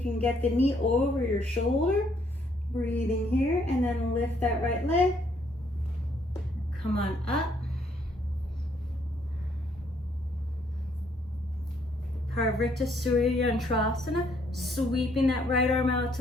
you can get the knee over your shoulder. Breathing here, and then lift that right leg. Come on up. Parvrita Suryantrasana, sweeping that right arm out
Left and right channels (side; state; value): both; normal; correlation 0.68